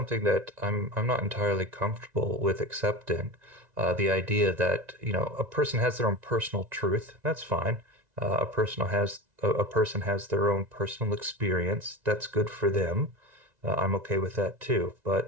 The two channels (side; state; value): left; late; 2.0 ms